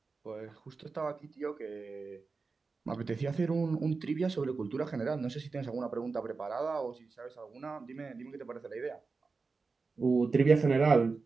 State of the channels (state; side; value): quieter; left; 4.3 dB